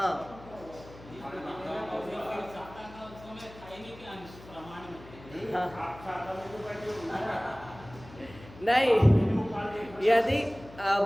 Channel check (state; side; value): noise; left; hum, 19 dB below the sound